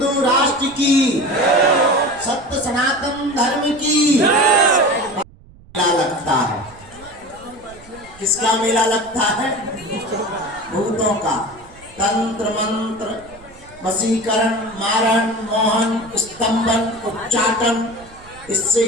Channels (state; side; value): noise; right; rumble, 23 dB below the sound